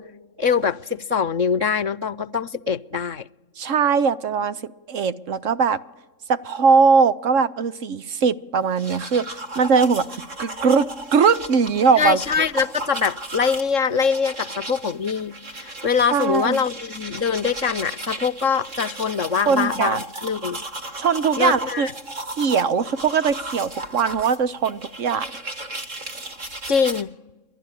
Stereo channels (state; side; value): late; left; 3.7 ms